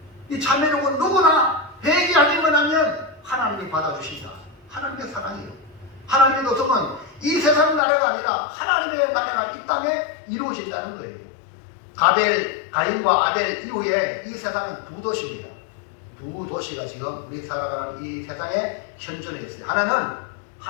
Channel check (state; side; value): drops out; right; at 7.8 s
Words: 이 참회록은 누구나 회개하기만 하면 하나님이 받아주신다. 하나님의 사랑이에요. 하나님의 도성은 이 세상 나라가 아니라 하나님의 나라가 이 땅에 이루어진다는 거예요. 가인과 아벨 이후에 이 세상은 두 도시입니다. 두 도시가 지금 우리 살아가는 이 세상에 현존해 있어요. 하나는